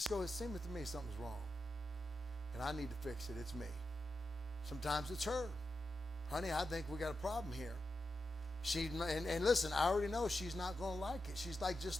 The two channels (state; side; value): normal; both; correlation 0.89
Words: go, it seems to me something's wrong. And I need to fix it. It's me. Sometimes it's her. Honey, I think we got a problem here. And listen, I already know she's not going to like it. She's like